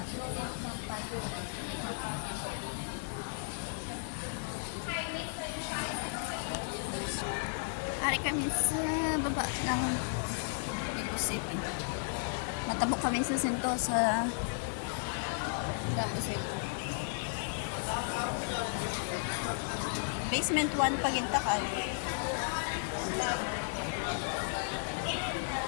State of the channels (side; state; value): right; silent; 55 dB below the other